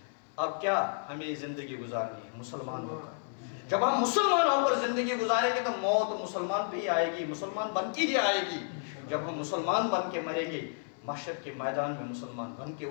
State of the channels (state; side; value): silent; right; 57 dB below the other